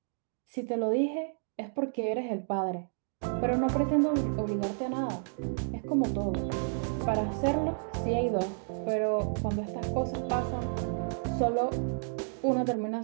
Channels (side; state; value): left; silent; digital silence